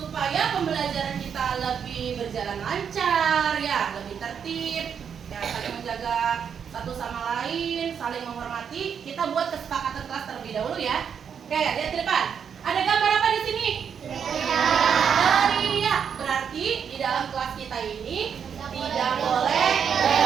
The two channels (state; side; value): quieter; left; 7.4 dB